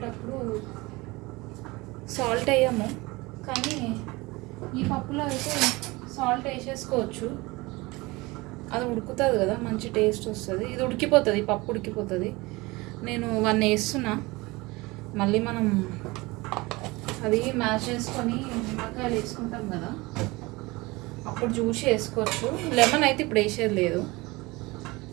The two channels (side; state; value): left; quieter; 22.8 dB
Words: సాల్ట్ వేయము, కానీ ఈ పప్పులో అయితే సాల్ట్ వేసేసుకోవచ్చు. అది ఉడుకుతుంది కదా, మంచి టేస్ట్ వస్తుంది. ఇది ఉడికిపోతుంది, పప్పు ఉడికిపోతుంది. నేను 1 వేస్తున్నా. మళ్ళీ మనం అది మ్యాష్ చేసుకొని నిమ్మకాయలు వేసుకుంటాం కదా, అప్పుడు జ్యూస్ వేసుకోవచ్చు. లెమన్ అయితే ఇప్పుడు వేసేది లేదు.